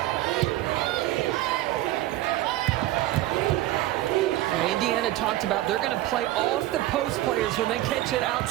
Indiana talked about they're going to play off the post players when they catch it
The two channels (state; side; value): quieter; left; 15.6 dB